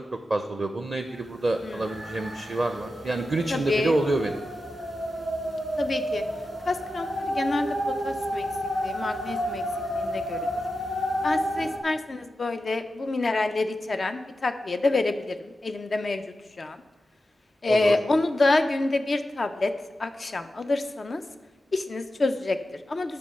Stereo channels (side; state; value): both; normal; correlation 0.91